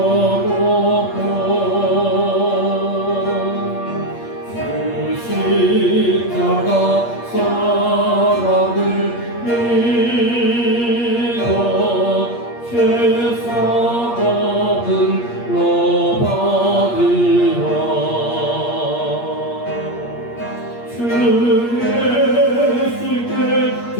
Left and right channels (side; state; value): right; late; 8.5 ms